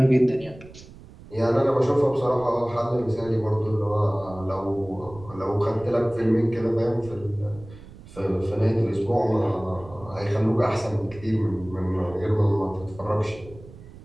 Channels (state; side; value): noise; right; rumble, 19 dB below the sound